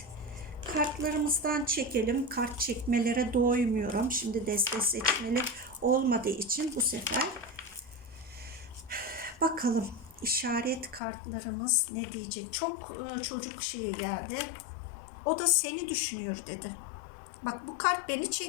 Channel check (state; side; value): drops out; right; at 11.0 s